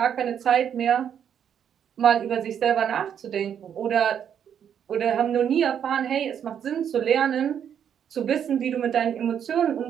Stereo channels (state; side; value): quieter; left; 8.7 dB